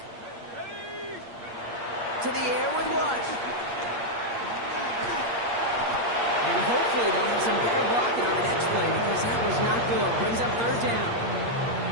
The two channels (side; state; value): left; late; 8.5 ms